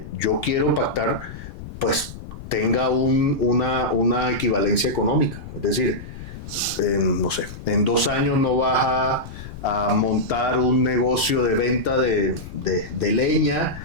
yo quiero pactar, pues tenga una equivalencia económica. Es decir, no sé, en 2 años no vas a montar un negocio de venta de leña,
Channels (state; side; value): noise; left; rumble, 13 dB below the sound